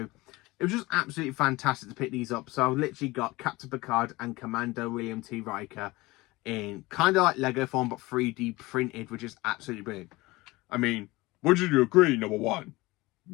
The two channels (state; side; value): quieter; right; 21.1 dB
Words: it was just absolutely fantastic to pick these up. So I've literally got Captain Picard and Commander William T. Riker in kind of like Lego form, but 3D printed, which is absolutely brilliant. I mean, would you agree, number 1?